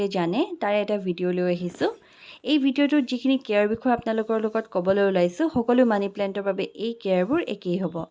জানে তাৰ এটা ভিডিও লৈ আহিছো। এই ভিডিওটোত যিখিনি কেয়াৰ বিষয় আপোনালোকৰ লগত ক'বলৈ ওলাইছো সকলো মানি প্লান্টৰ বাবে এই কেয়াৰবোৰ একেই হ'ব।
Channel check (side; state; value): both; identical; correlation 1.00